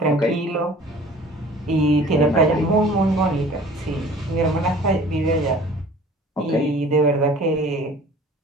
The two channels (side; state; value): both; normal; correlation 0.47